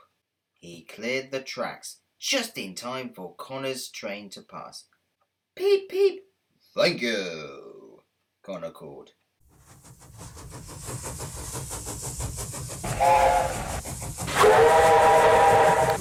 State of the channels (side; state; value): both; identical; correlation 1.00